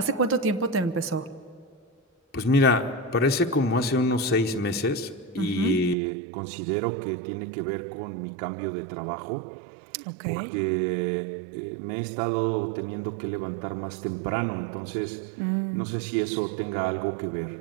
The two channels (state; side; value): drops out; left; at 6.0 s